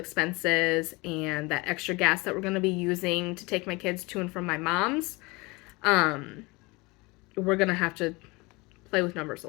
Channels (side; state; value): right; quieter; 25.1 dB